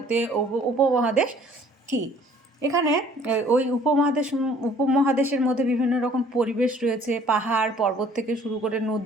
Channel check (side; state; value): both; normal; correlation 0.56